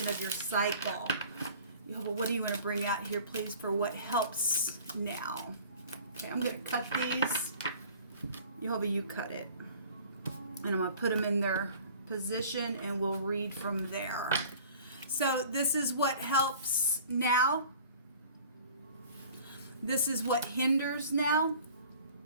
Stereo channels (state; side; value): inverted; both; correlation -0.47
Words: of your cycle. Jehovah, what do you want to bring out here, please, for what helps now? Okay, I'm going to cut these. Jehovah, you cut it. And I'm going to put them in their position, and we'll read from there. So this is what helps now. This is what hinders now.